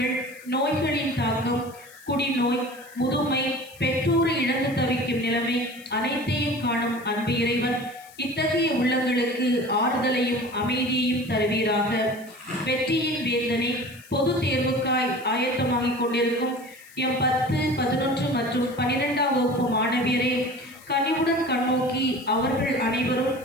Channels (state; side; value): noise; left; hiss, 23 dB below the sound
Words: நோய்களின் தாக்கம், குடிநோய், முதுமை, பெற்றோரை இழந்து தவிக்கும் நிலைமை அனைத்தையும் காணும் அன்பு இறைவன் இத்தகைய உள்ளங்களுக்கு ஆறுதலையும் அமைதியையும் தருவீராக. வெற்றியின் வேந்தனை, பொது தேர்வுக்காய் ஆயத்தமாகிக் கொண்டிருக்கும் எம் 10, 11 மற்றும் 12ஆம் வகுப்பு மாணவியரை கனிவுடன் கண்ணோக்கி அவர்கள் அனைவரும்